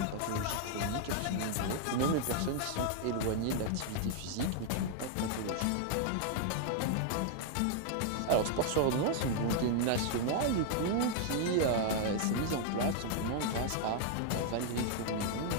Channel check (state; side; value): different; both; correlation 0.00